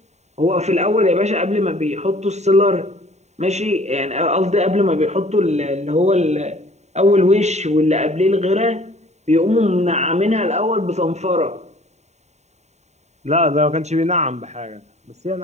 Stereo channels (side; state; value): left; late; 0.32 ms